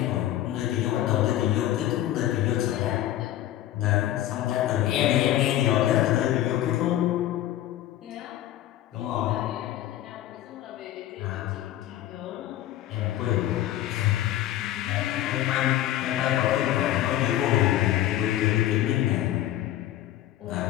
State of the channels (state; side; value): quieter; right; 13.3 dB